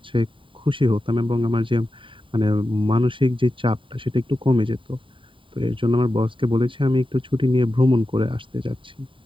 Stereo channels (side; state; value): left; late; 0.25 ms